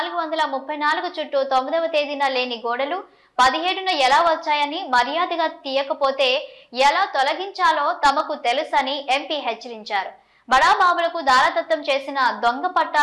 చుట్టూ 9వ తేదీన లేని గోడలు 17న ఎలా వచ్చాయని, మర్యాదగా తీయకపోతే ఎలా తొలగించాలో తమకు తెలుసని ఎంపీ హెచ్చరించారు. బడాబాబులకు దారదత్తం చేసిన దొంగ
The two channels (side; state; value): both; identical; correlation 1.00